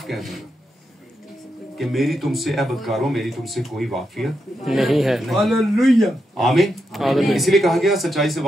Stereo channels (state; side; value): normal; both; correlation 0.85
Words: कह दूंगा कि मेरी तुमसे ऐ बदकारों, मेरी तुमसे कोई वाकियत नहीं है। हालेलुया। आमीन। इसलिए कहा गया सच्चाई से